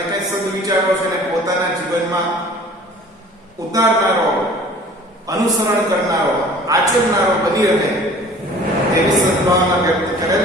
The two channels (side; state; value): both; normal; correlation 0.48